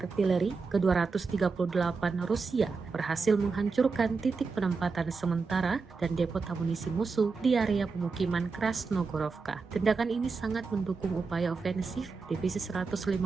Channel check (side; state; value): left; quieter; 4.6 dB